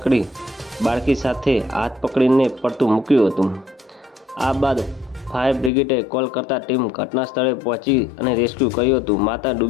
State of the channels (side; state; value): right; drops out; at 5.7 s